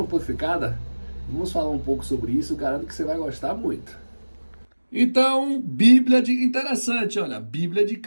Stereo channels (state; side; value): inverted; both; correlation -1.00